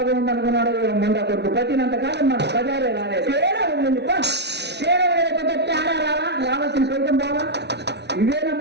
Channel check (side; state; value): left; late; 0.50 ms